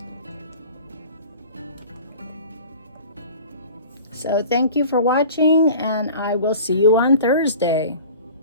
So thank you for watching, and I will see you on Thursday.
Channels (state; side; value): inverted; both; correlation -0.42